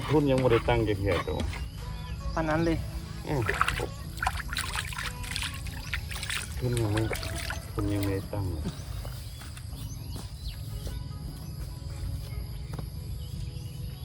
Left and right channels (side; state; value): both; identical; correlation 1.00